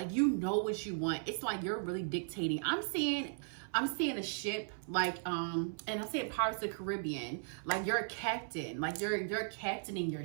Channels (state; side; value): silent; left; 53 dB below the other